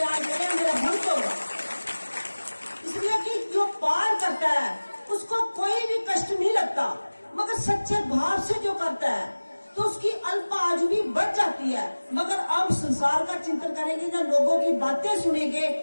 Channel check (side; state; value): both; inverted; correlation -1.00